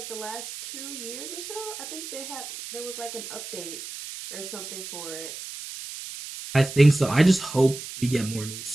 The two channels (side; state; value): right; noise; hiss, 10 dB below the sound